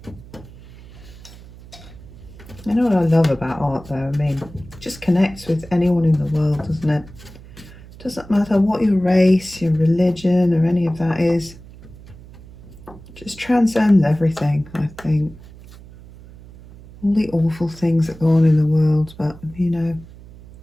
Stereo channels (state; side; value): noise; right; hum, 19 dB below the sound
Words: You know what I love about art though? I mean, it just connects with anyone in the world, doesn't it? Doesn't matter what your race, your religion, or any of that is. It just transcends everything, I think. All the awful things that go on in the world, but you know,